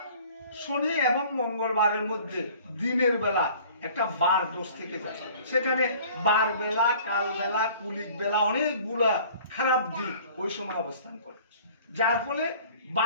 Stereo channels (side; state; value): both; inverted; correlation -0.50